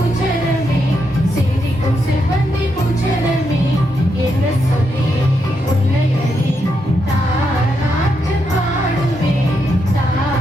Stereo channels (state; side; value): normal; both; correlation 0.81